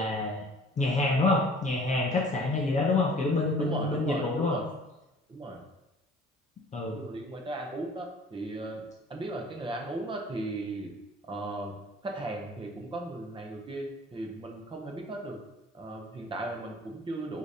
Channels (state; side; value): normal; both; correlation 0.49